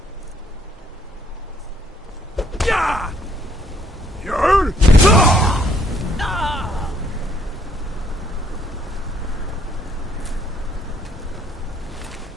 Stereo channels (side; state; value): both; normal; correlation 0.67